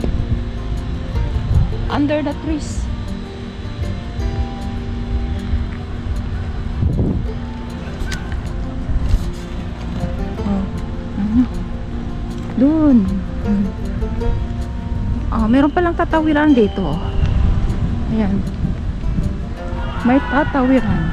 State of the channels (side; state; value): both; identical; correlation 1.00